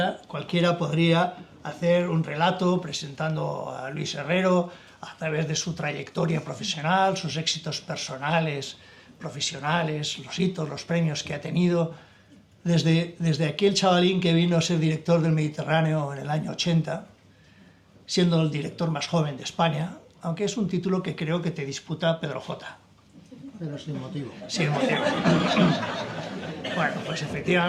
podría hacer un relato presentando a Luis Herrero a través de su trayectoria profesional, sus éxitos personales, profesionales, los hitos, los premios que ha tenido, desde aquel chavalín que vino a ser director del Mediterráneo en el año 80, siendo el director más joven de España, aunque es un título que creo que te disputa Pedro J. Pero sin motivo. Sin motivo. Bueno, pues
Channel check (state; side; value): identical; both; correlation 1.00